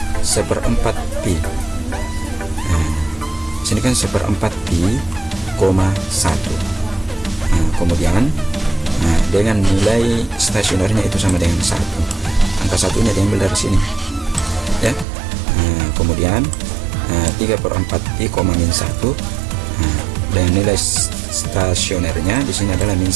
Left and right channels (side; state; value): left; drops out; at 15.1 s